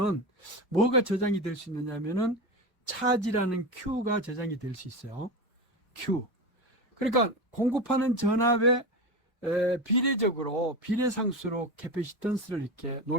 뭐가 저장이 될 수 있느냐면은 차지라는 Q가 저장이 될 수 있어요. Q. 그러니까 공급하는 전압에 비례적으로 비례상수로 캐패시턴스를 이렇게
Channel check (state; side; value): normal; both; correlation 0.22